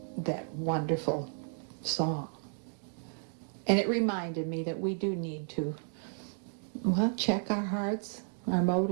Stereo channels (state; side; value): silent; left; 56 dB below the other